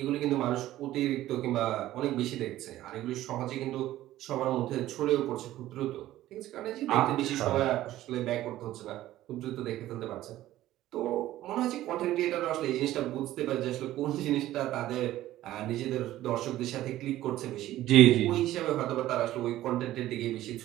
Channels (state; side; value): quieter; left; 14.6 dB